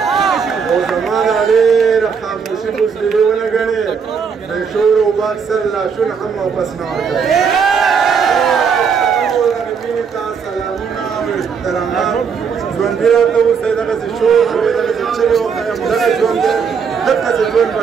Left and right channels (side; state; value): left; quieter; 6.3 dB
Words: او زمانه ډېره خاموشي بزدلي ونه ګڼي د شور او باکسر لاشونه هم واپس نه ورکړي مینې ته سلامونه او احترامات ژوندي راته اوسئ دغسې شور کوئ دغسې چغې وکړئ دغه ژوند دی دغسې ژوند به